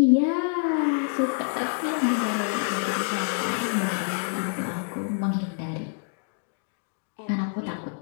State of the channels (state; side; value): silent; right; 60 dB below the other